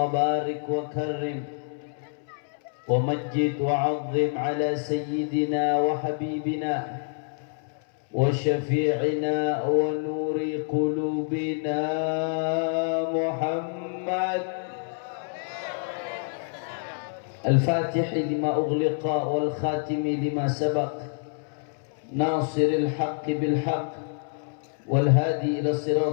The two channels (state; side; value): silent; right; 60 dB below the other